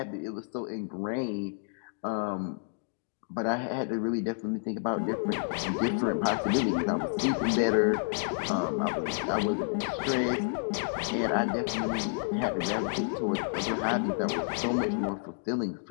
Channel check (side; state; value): right; silent; digital silence